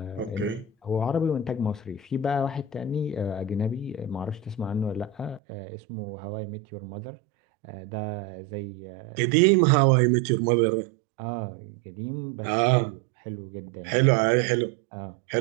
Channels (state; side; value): drops out; left; at 5.4 s